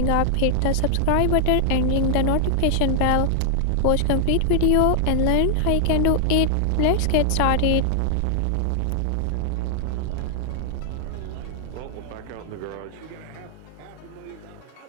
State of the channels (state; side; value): different; both; correlation -0.01